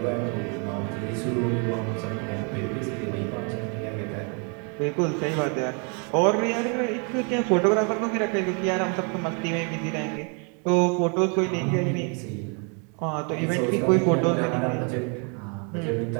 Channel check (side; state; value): left; quieter; 36.7 dB